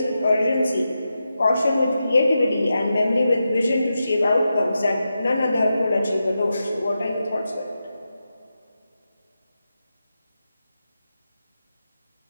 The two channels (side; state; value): both; inverted; correlation -0.89